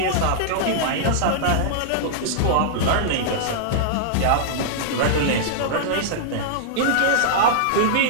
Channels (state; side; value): different; both; correlation -0.02